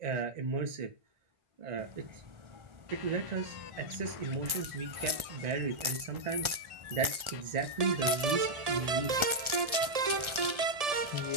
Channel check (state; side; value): late; left; 1.3 ms